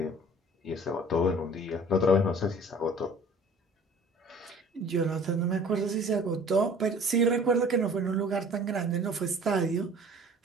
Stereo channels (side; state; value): both; normal; correlation 0.49